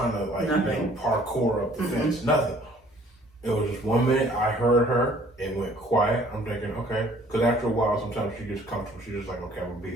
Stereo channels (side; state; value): both; normal; correlation 0.56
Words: to parkour up the fence. Nothing. It was just 1 minute I heard her and went quiet. I'm thinking, okay. Because after a while, sometimes she gets comfortable. She's just like, okay, I'm going to be